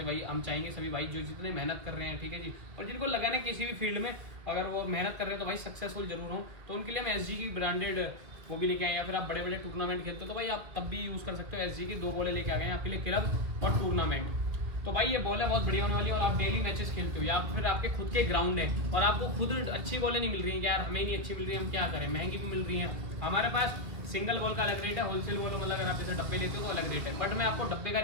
भाई हम चाहेंगे सभी भाई जो जितने मेहनत कर रहे हैं, ठीक है जी, और जिनको लगा ना किसी भी फील्ड में अगर वो मेहनत कर रहे हैं तो भाई सक्सेसफुल जरूर हो, तो उनके लिए हम एसजी की ब्रांडेड वो भी लेके आए। या फिर आप बड़े बड़े टूर्नामेंट खेलते हो तो भाई आप तब भी यूज़ कर सकते हो। एसजी की 2 बॉलें लेके आ गए हैं आपके लिए, क्लब और टूर्नामेंट। तो भाई ये बॉल है बहुत बढ़िया होने वाली है। और आप डेली मैचेस खेलते हो या फिर आपके खुद के ग्राउंड है और आपको खुद अच्छी बॉलें नहीं मिल रही हैं, यार हमें ही नहीं अच्छी मिल रही है, हम क्या करें, महंगी भी मिल रही हैं। हमारे पास सिंगल बॉल का अलग रेट है, होलसेल बॉल मतलब अगर आप जैसे डब्बे लेते हो तो अलग रेट है। बट मैं आपको डब्बे का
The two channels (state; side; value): late; left; 2.2 ms